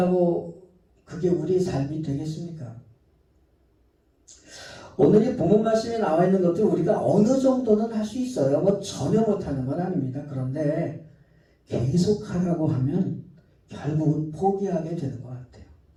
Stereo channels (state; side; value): identical; both; correlation 1.00